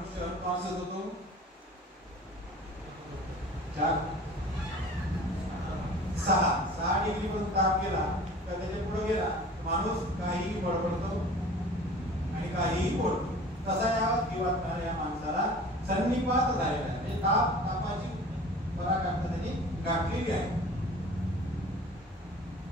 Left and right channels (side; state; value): both; normal; correlation 0.43